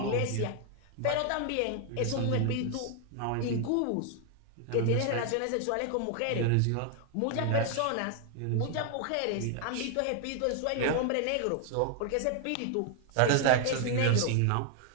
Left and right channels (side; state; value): both; different; correlation 0.00